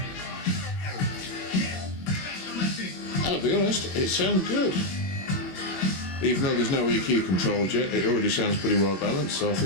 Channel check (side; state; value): right; late; 21 ms